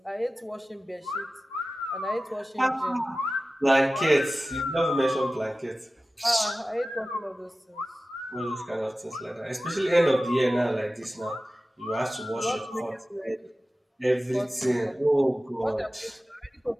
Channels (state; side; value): normal; both; correlation 0.95